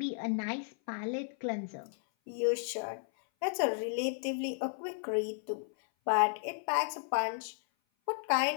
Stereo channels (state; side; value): silent; right; 55 dB below the other